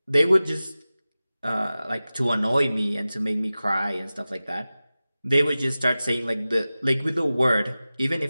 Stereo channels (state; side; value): inverted; both; correlation -0.96